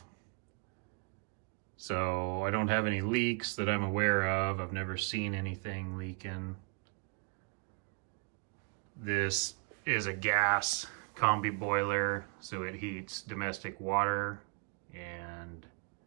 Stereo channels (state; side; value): quieter; left; 37.6 dB